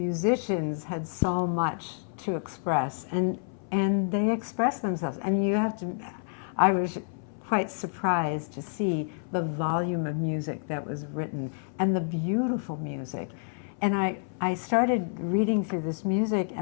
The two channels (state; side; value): silent; right; 57 dB below the other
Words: had so much to express, and they expressed themselves. And I was quite surprised to see the volume of music that was written and the beautiful music. And I started reading through this music,